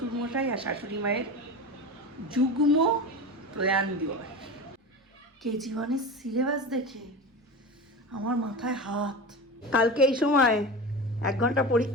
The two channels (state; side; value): normal; both; correlation 0.27